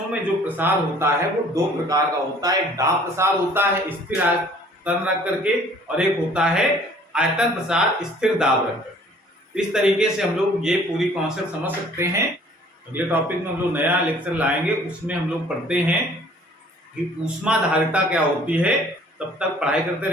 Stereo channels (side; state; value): both; normal; correlation 0.54